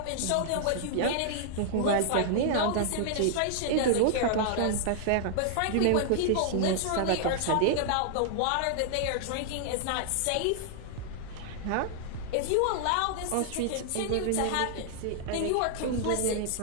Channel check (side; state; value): both; different; correlation -0.01